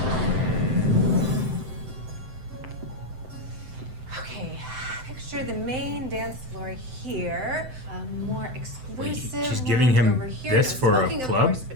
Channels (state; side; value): late; left; 7.8 ms